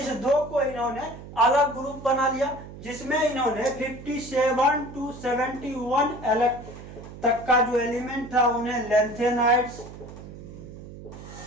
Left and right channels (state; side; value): noise; right; hum, 14 dB below the sound